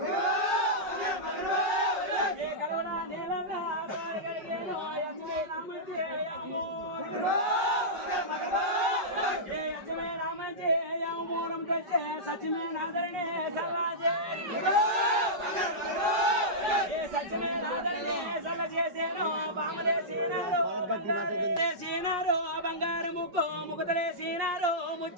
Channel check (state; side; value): late; left; 5.2 ms